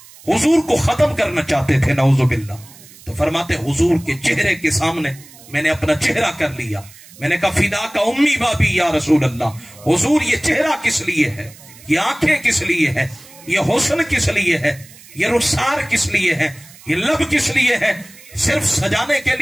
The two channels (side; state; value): right; noise; hiss, 22 dB below the sound